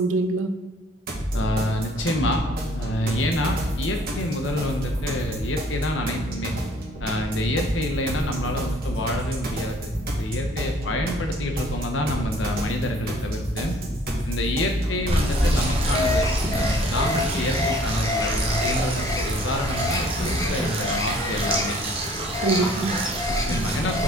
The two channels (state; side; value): normal; both; correlation 0.56